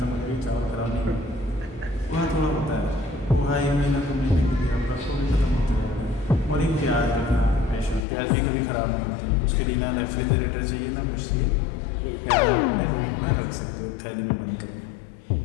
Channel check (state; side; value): drops out; right; at 8.0 s